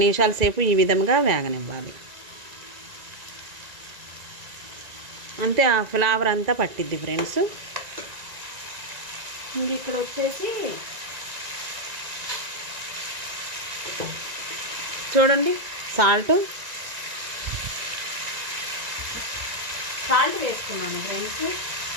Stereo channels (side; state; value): left; late; 1.9 ms